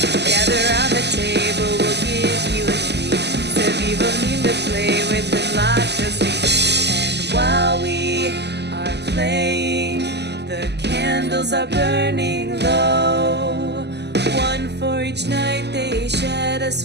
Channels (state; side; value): late; left; 0.50 ms